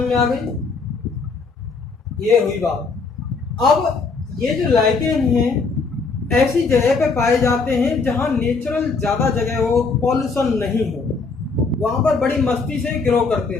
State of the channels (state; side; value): quieter; right; 4.4 dB